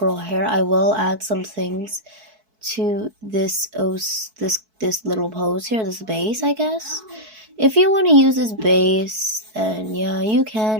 hair, I will add some things to this little pose here, this base, I guess. If you want to use this base, then yeah, you can.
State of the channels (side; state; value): left; late; 4.6 ms